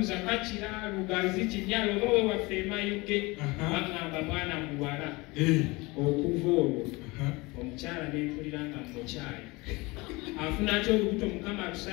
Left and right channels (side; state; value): right; quieter; 24.0 dB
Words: kakira lugazi kinyalo oba we waffe emayuge bagamba mwana muwala okuva olwo omukyala nenkulira nga mukyayi afuna atya olubuto mukama